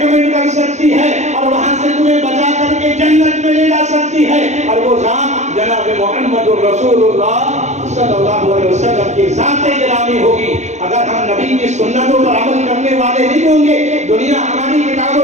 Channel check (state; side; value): late; left; 0.33 ms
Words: کر سکتی ہے، اور وہاں سے تمہیں بچا کر کے جنت میں لے جا سکتی ہے. اور وہ ذات جناب محمد رسول اللہ صلی اللہ علیہ وسلم کی ذات گرامی ہوگی. اگر ہم نبی کی سنتوں پر عمل کرنے والے نہیں ہوں گے، دنیا ہماری کتاب